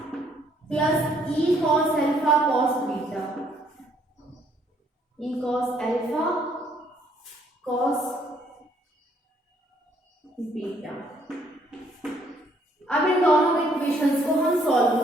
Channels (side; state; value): both; normal; correlation 0.67